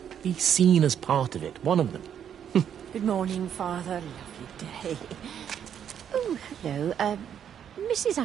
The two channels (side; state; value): left; quieter; 8.9 dB